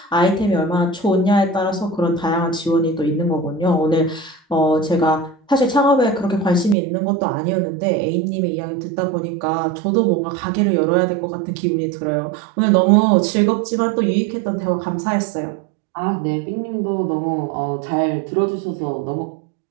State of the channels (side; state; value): left; drops out; at 6.8 s